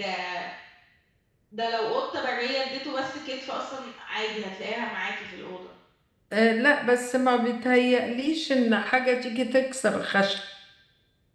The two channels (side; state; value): both; identical; correlation 1.00